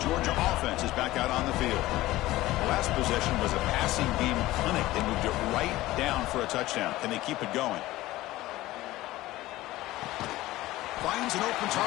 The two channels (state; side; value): quieter; right; 17.1 dB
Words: Georgia offense is back out on the field. The last possession was a passing game clinic. They moved it right down for a touchdown. Can they keep it going? Finds an open